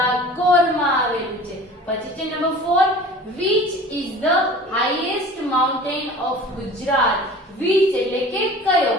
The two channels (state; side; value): normal; both; correlation 0.42